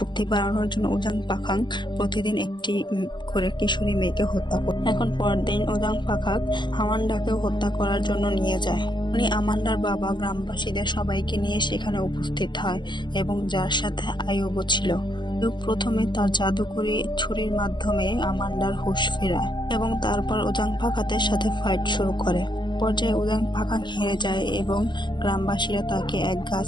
বাড়ানোর জন্য ওজাং পাখাং প্রতিদিন একটি করে কিশোরী মেয়েকে হত্যা করে। এখন পরদিন ওজাং পাখাং আমান্ডাকেও হত্যা করার জন্য নিয়ে যায়। উনি আমান্ডার বাবা গ্রামবাসীদের সবাইকে নিয়ে সেখানে উপস্থিত হয় এবং যার সাথে আয়ুবও ছিল। প্রথমে তার জাদুকরী ছুরির মাধ্যমে আমান্ডার হুঁশ ফেরায় এবং তারপর ওজাং পাখাংয়ের সাথে ফাইট শুরু করে। পর্যায়ে ওজাং পাখাং হেরে যায় এবং গ্রামবাসীরা তাকে এক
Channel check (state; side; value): late; right; 0.22 ms